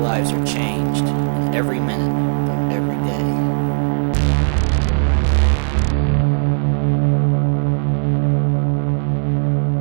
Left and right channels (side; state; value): left; silent; digital silence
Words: are changed in every minute of every day.